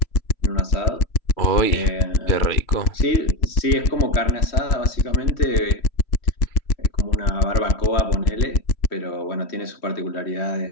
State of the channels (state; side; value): late; right; 3.2 ms